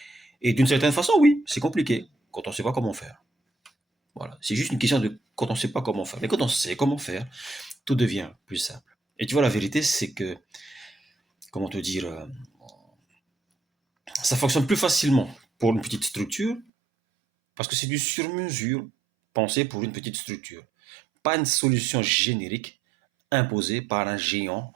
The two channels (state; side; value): drops out; left; at 16.7 s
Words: Et d'une certaine façon, oui, c'est compliqué quand on sait pas comment faire. Voilà. C'est juste une question de quand on sait pas comment faire. Mais quand on sait comment faire, tout devient plus simple. Et tu vois, la vérité, c'est que, comment te dire, ça fonctionne plus facilement pour une petite structure parce que c'est du sur-mesure pensé pour une petite structure. Pas une solution générique imposé par un géant.